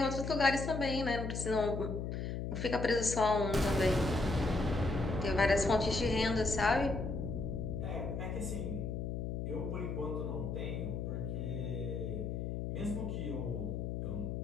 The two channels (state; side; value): noise; left; hum, 3 dB below the sound